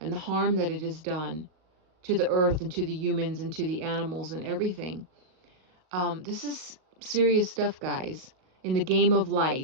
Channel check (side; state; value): left; late; 38 ms